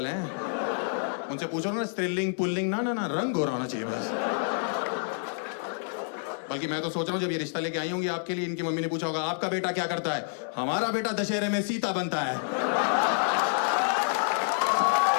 हैं। उनसे पूछो ना स्त्रीलिंग पुल्लिंग, ना ना ना, रंग गोरा होना चाहिए बस। बल्कि मैं तो सोच रहा हूँ जब ये रिश्ता लेके आई होंगी आपके लिए, इनकी मम्मी ने पूछा होगा आपका बेटा क्या करता है? हमारा बेटा दशहरे में सीता बनता है।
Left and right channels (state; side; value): silent; right; 59 dB below the other